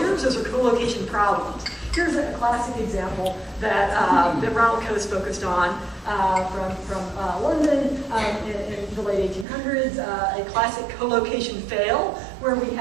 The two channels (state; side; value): drops out; left; at 9.5 s